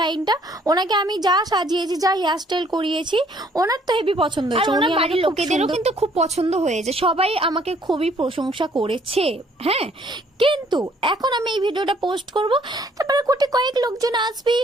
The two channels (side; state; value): both; normal; correlation 0.62